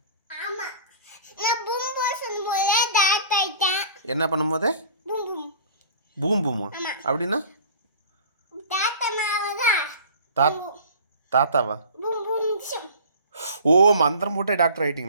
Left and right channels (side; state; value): both; inverted; correlation -0.42